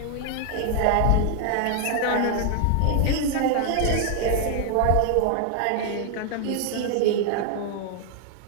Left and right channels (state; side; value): different; both; correlation 0.00